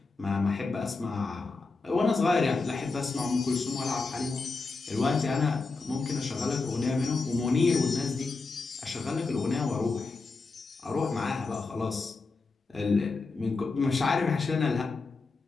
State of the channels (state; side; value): quieter; right; 4.0 dB